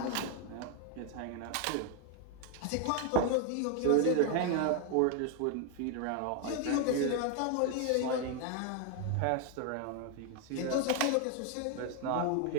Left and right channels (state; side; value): different; both; correlation 0.00